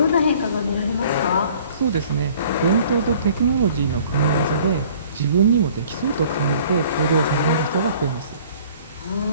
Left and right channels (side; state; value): both; inverted; correlation -0.53